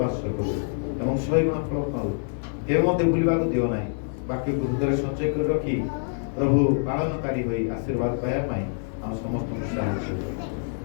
ବାସ କରୁ ଏବଂ 100 ଗୁଣ ଫଳ ପାଉ। କେବେ ମଧ୍ୟ ଭୁଲିବାକୁ ଦିଅ ନାହିଁ। ବାକ୍ୟକୁ ହୃଦୟରେ ସଞ୍ଚୟ କରି ରଖି ପ୍ରଭୁ ପାଳନକାରୀ ହୋଇ ଆଶୀର୍ବାଦ ପାଇବା ପାଇଁ ଆମ ସମସ୍ତଙ୍କୁ ସାହାଯ୍ୟ କର।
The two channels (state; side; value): silent; right; 60 dB below the other